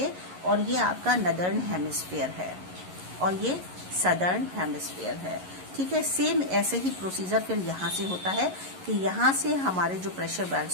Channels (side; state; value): left; late; 11 ms